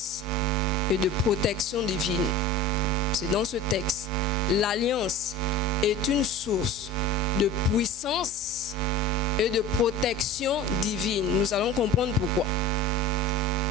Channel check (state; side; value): normal; both; correlation 0.36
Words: et de protection divine. C'est dans ce texte. L'alliance est une source de puissance et de protection divine. Nous allons comprendre pourquoi.